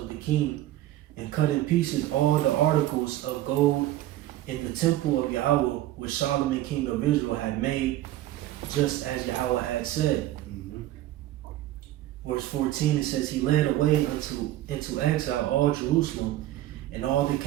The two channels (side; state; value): left; quieter; 14.4 dB